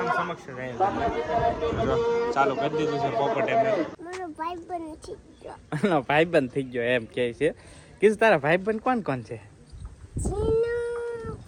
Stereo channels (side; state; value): both; identical; correlation 1.00